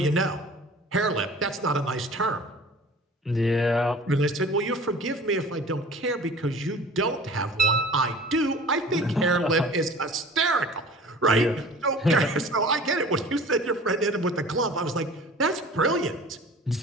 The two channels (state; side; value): normal; both; correlation 0.43